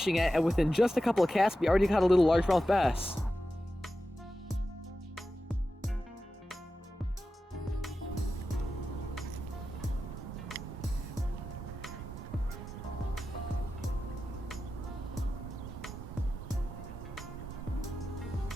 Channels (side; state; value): both; normal; correlation 0.92